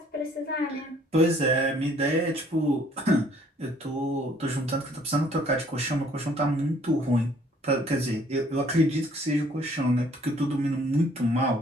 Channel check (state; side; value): normal; both; correlation 0.60